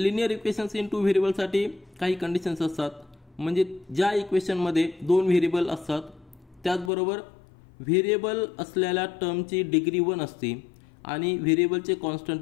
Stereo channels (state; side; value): drops out; right; at 6.9 s